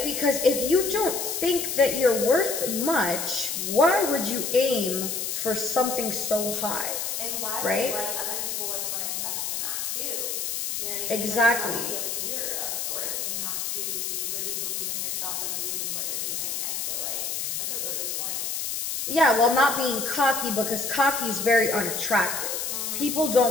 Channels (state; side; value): noise; left; hiss, 2 dB below the sound